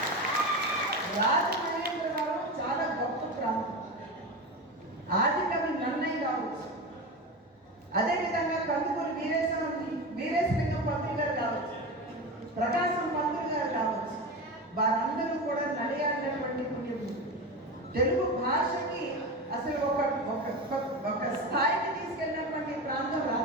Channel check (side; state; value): both; normal; correlation 0.23